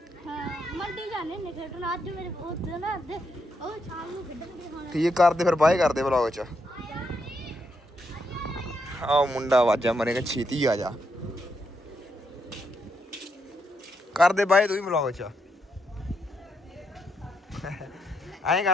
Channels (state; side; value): normal; both; correlation 0.79